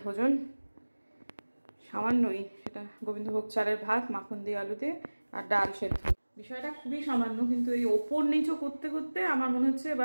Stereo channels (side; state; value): both; inverted; correlation -1.00